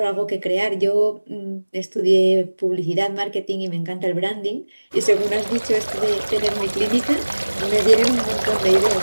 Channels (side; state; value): both; inverted; correlation -1.00